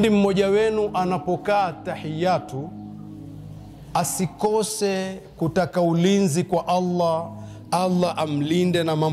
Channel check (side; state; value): both; identical; correlation 1.00